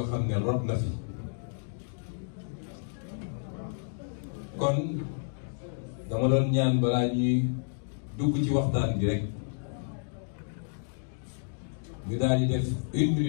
xam ne rot na fi. kon dama doon ñaan balaa ñuy dugg ci waxtaan bi rek ñu daal di def 1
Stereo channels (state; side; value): silent; right; digital silence